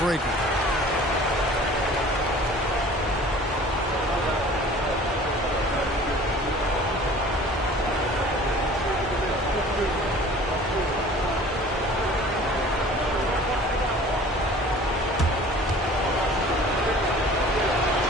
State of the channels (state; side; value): normal; both; correlation 0.47